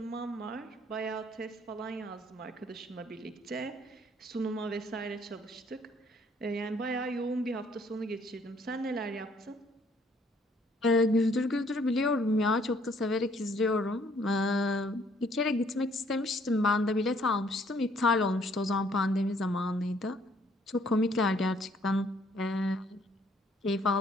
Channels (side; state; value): both; normal; correlation 0.63